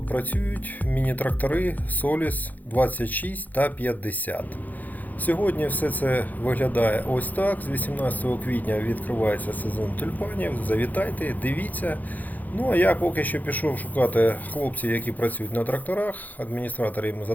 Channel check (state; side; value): late; right; 0.082 ms